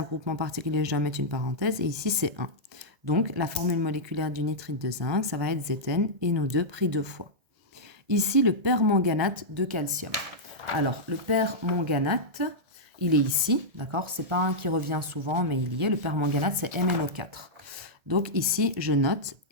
groupement particulier, je dois mettre une parenthèse. Et ici, c'est 1. Donc, la formule moléculaire du nitrite de zinc, ça va être Zn, NO2 pris 2 fois. Ici, le permanganate de calcium. Alors, le permanganate, il est ici, d'accord? C'est pas un qui revient souvent, mais il y est. Le permanganate, c'est MnO4. Donc, ici, je note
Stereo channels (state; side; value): late; left; 1.8 ms